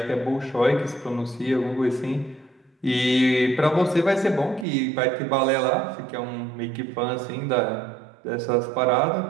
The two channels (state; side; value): drops out; left; at 4.7 s